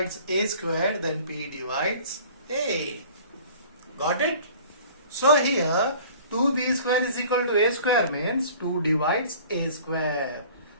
a square, then p divides a. Got it? So here 2b square is equal to a square means 2 divides a square.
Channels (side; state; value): both; inverted; correlation -0.47